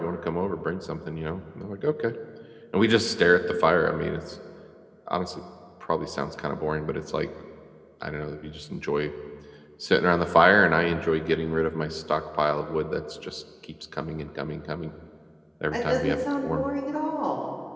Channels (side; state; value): both; identical; correlation 1.00